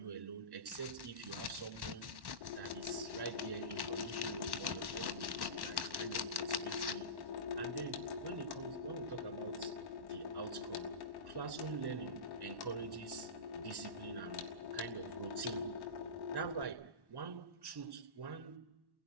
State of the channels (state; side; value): late; left; 1.1 ms